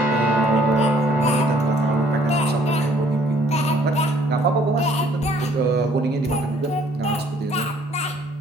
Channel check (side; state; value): both; normal; correlation 0.60